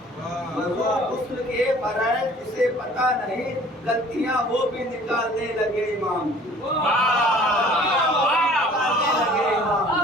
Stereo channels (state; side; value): normal; both; correlation 0.51